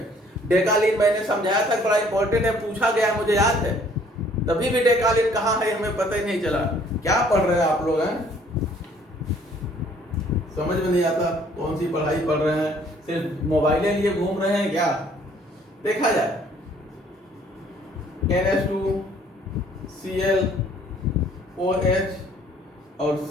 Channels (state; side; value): normal; both; correlation 0.59